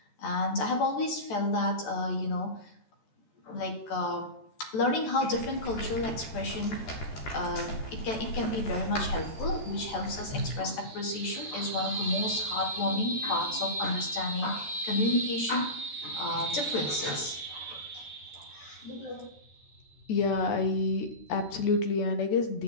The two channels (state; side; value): late; right; 14 ms